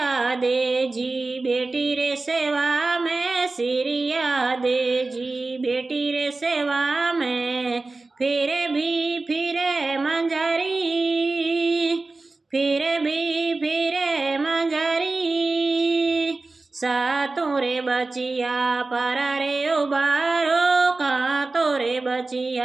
दे जी बेटी रे सेवा में, सिरिया दे जी बेटी रे सेवा में। फिर भी फिरे मंजरी, फिर भी फिरे मंजरी। सातों रे बचिया पारा रे उबारो, कांतो रे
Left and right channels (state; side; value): quieter; left; 3.4 dB